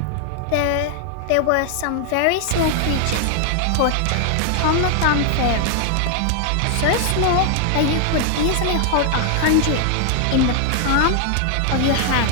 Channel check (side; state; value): both; different; correlation 0.00